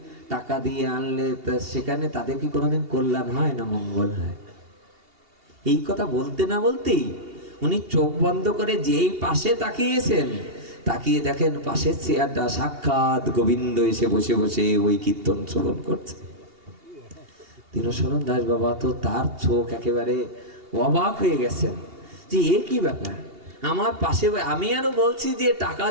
টাকা দিয়ে আনলে সেখানে তাদের কি কোনোদিন কল্যাণ হয় না মঙ্গল হয়? এই কথা বলতে না বলতেই উনি চোখ বন্ধ করে যেই পাশে তাকিয়েছেন, তাকিয়ে দেখেন পাশের চেয়ারটা সাক্ষাৎ গোবিন্দ এসে বসে বসে ওই কীর্তন শ্রবণ করছে। দীনশরণ দাস বাবা তো তার চোখ একেবারে অবাক হয়ে গেছেন যে এ কি ব্যাপার, আমার পাশে, আমি আরো বলছি যে টাকা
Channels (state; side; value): late; left; 2.8 ms